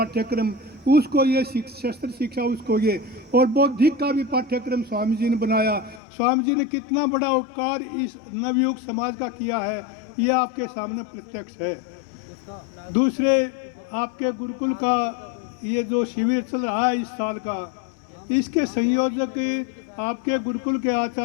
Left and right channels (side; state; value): right; drops out; at 6.0 s